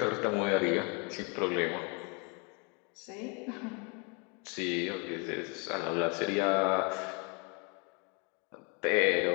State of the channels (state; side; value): quieter; right; 34.2 dB